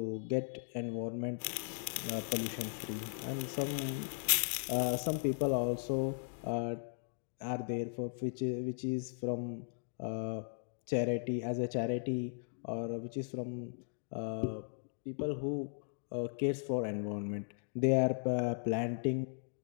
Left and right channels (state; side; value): silent; right; digital silence